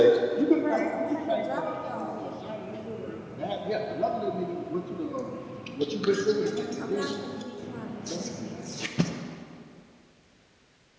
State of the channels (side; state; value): both; identical; correlation 1.00